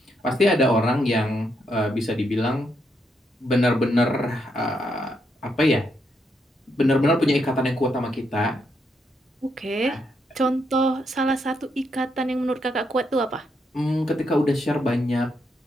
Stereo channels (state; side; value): normal; both; correlation 0.78